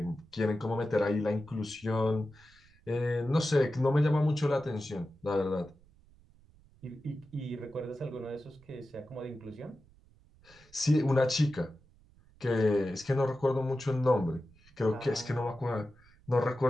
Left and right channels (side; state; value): right; noise; rumble, 28 dB below the sound